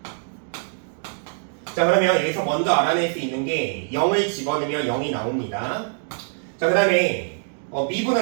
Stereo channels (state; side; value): silent; left; digital silence